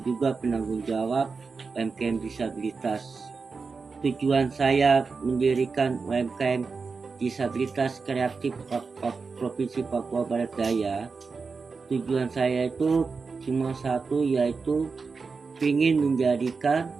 juga penanggung jawab UMKM disabilitas. Tujuan saya mendirikan UMKM disabilitas kreatif Provinsi Papua Barat Daya, tujuan saya itu cuma satu, yaitu ingin menjadikan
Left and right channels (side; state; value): left; quieter; 4.7 dB